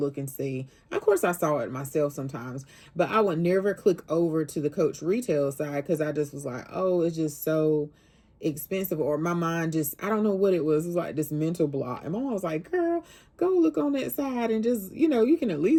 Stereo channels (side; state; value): both; identical; correlation 1.00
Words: and see. Of course, I saw it myself sometimes, but I would never click over to the Coach retail side because I just was like, oh, it's just so expensive, or my mind just, I don't know what it was. It was like this mental block. And my mom was like, girl, go look on that side and just, you can at